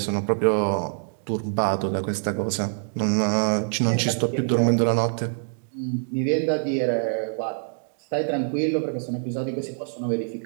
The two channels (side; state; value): left; silent; digital silence